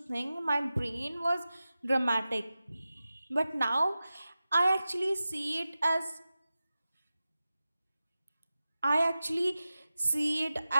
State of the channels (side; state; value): both; inverted; correlation -0.94